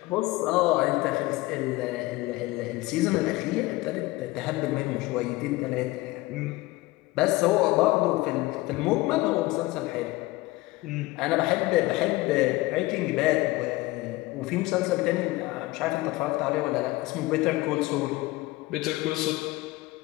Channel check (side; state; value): right; quieter; 19.8 dB